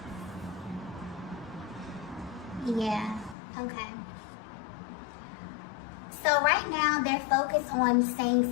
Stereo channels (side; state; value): right; drops out; at 3.4 s